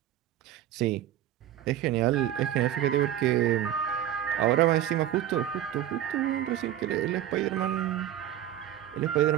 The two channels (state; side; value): quieter; left; 11.8 dB